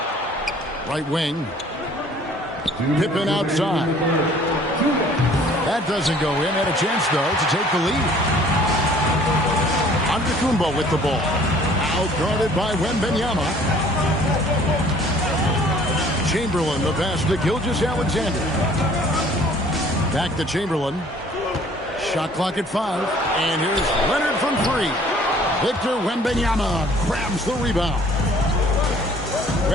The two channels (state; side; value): normal; both; correlation 0.54